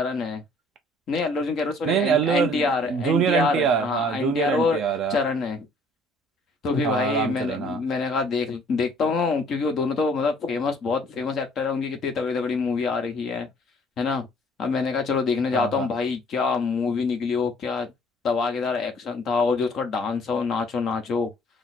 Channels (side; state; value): both; normal; correlation 0.57